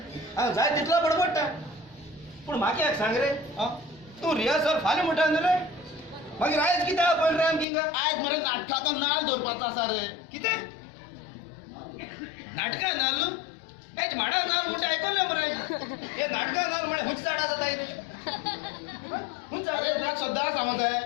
हांव जाय तितलो बडबडटा पूण म्हाका एक सांग रे तूं रिहर्सल फाल्यां म्हणटा न्हू रे मागीर आयज कित्याक पळय रे आमकिंगा आज मरे नाटकाचो नाल दवरपाचो आसा रे कितें नाटकां नाल कांयच म्हाडा नाल म्हणटा आयकोन ना मरे हे नाटकां नाल म्हळ्यार हुंच झाडां जाताय रे हुंच अरे झाडां तुला सद्दां सांगत आहे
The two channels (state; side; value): drops out; right; at 7.7 s